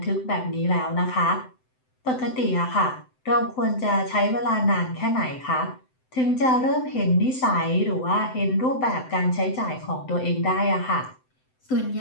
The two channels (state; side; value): late; right; 7.8 ms